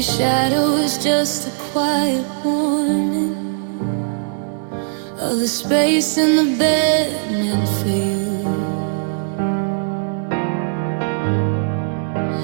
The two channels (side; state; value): left; silent; 63 dB below the other